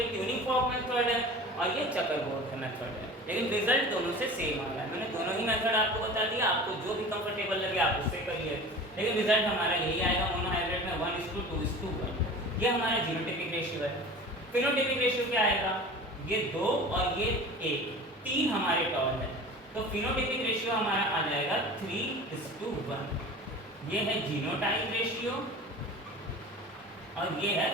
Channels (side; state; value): both; normal; correlation 0.38